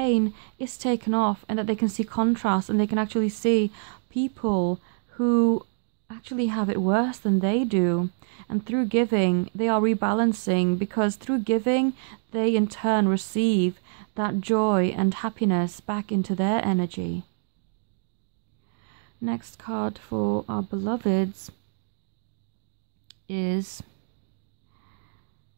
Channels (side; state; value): left; silent; digital silence